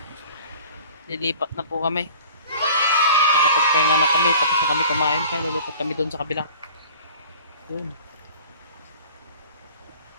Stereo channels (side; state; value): both; inverted; correlation -0.44